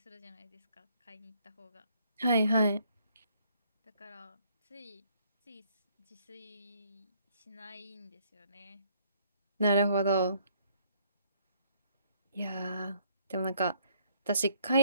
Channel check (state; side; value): inverted; both; correlation -0.66